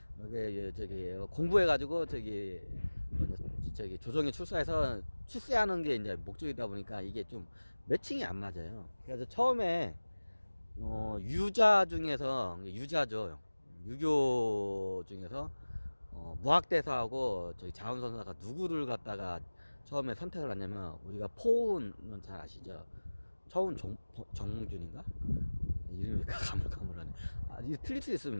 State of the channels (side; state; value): both; inverted; correlation -1.00